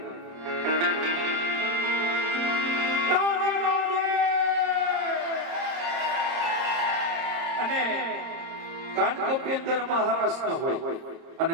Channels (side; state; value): left; late; 30 ms